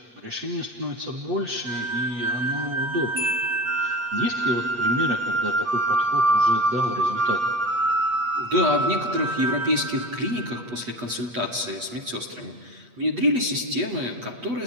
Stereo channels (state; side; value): late; left; 8.4 ms